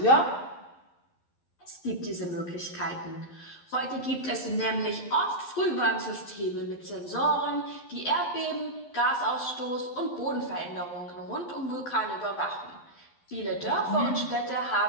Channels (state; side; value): late; right; 11 ms